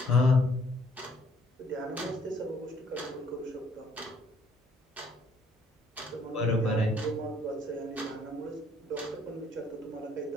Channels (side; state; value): both; normal; correlation 0.64